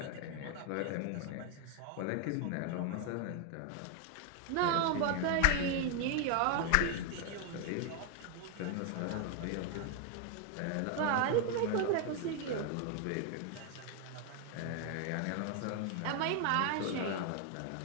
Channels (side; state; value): both; different; correlation 0.01